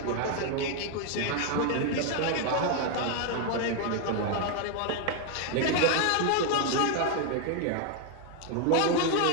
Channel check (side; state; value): both; different; correlation 0.01